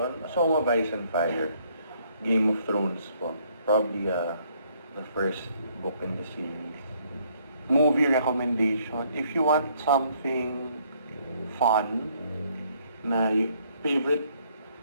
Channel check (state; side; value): inverted; both; correlation -0.67